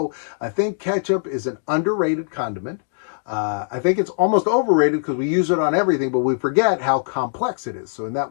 I think ketchup is an underrated condiment. I think it's almost overrated because we use it on everything, but we forget how complex it is. So in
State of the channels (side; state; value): right; silent; digital silence